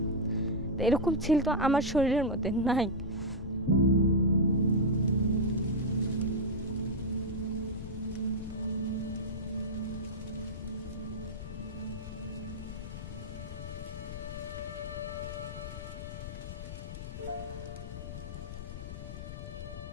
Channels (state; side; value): noise; left; rumble, 8 dB below the sound